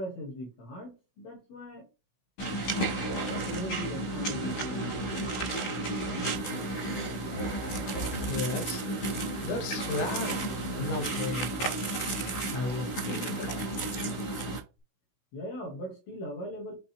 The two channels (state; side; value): late; right; 16 ms